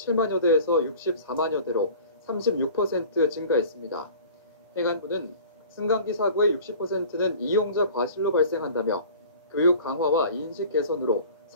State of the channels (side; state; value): both; inverted; correlation -0.43